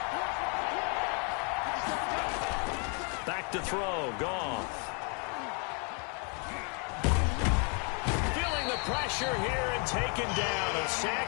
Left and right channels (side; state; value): right; quieter; 36.8 dB